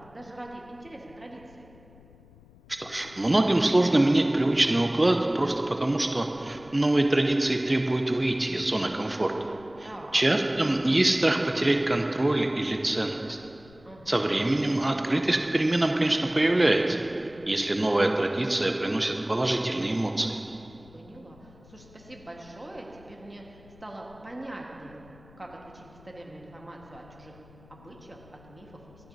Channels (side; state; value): left; noise; rumble, 25 dB below the sound